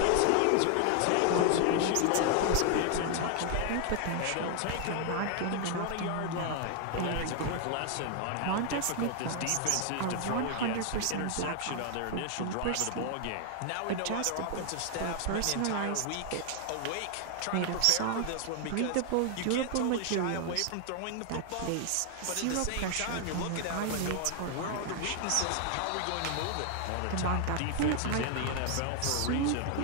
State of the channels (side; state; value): both; different; correlation 0.00